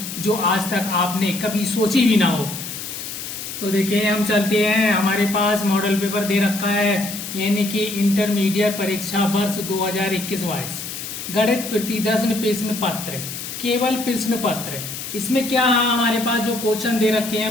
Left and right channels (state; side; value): noise; left; hiss, 8 dB below the sound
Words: जो आज तक आपने कभी सोची भी ना हो। तो देखिए हम चलते हैं, हमारे पास मॉडल पेपर दे रखा है यानी कि इंटरमीडिएट परीक्षा वर्ष 2021-22 गणित प्रतिदर्शन प्रश्न पत्र, केवल प्रश्न पत्र। इसमें क्या है, हमारे पास जो क्वेश्चन दे रखे